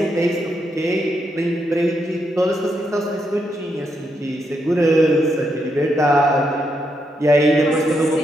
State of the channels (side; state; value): both; normal; correlation 0.80